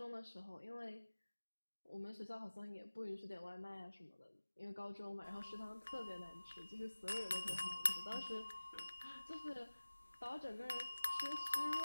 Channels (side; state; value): both; inverted; correlation -1.00